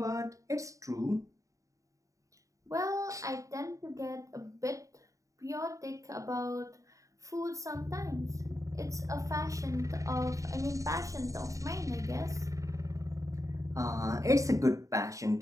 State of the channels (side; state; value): left; late; 0.16 ms